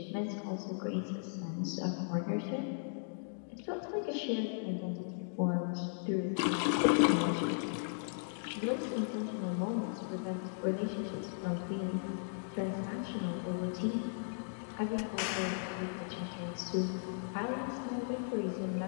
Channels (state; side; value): silent; right; digital silence